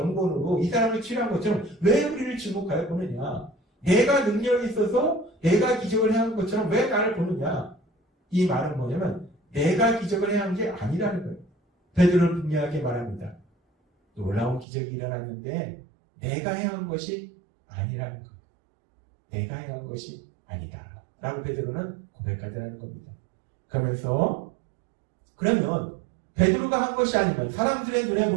이 사람을 치료한 것처럼 왜 우리를 지목하여 보느냐, 내가 능력이 있어서 내가 기적을 해야 한 것처럼 왜 나를 보느냐. 이 말은 뭐냐면 내가 기적을 해야 한 게 아니라는 거예요. 베드로는 분명하게 말합니다. 놀라운 기적이 일어났는데 내가 해야 한 것이 아니라는 거예요. 내가 해야 한 것이 아니다 라고 베드로는 고백하더라는 겁니다. 그러면 베드로가 한 것이 아니면, 사람들의 눈에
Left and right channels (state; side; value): drops out; left; at 14.7 s